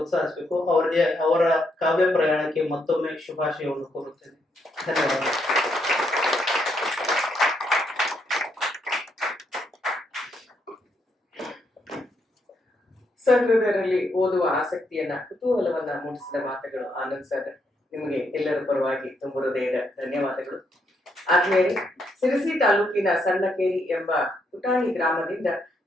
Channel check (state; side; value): normal; both; correlation 0.77